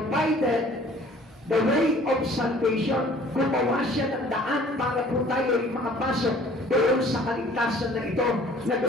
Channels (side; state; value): both; normal; correlation 0.53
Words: the way of salvation. Gumawa siya ng daan para po tayo ay makapasok doon sa kaligtasan na ito na